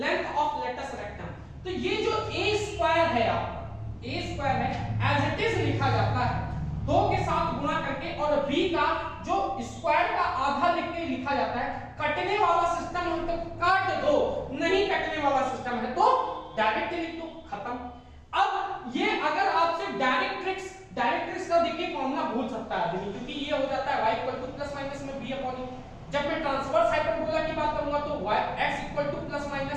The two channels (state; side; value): identical; both; correlation 1.00